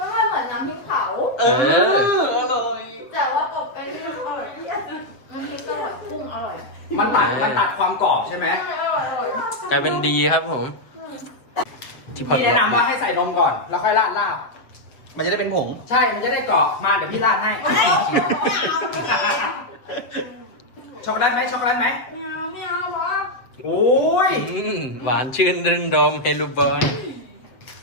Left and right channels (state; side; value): late; right; 7.4 ms